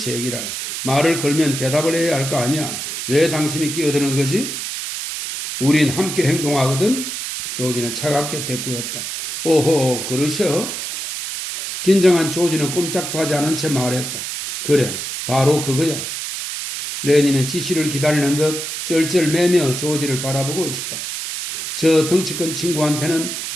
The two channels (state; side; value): noise; right; hiss, 5 dB below the sound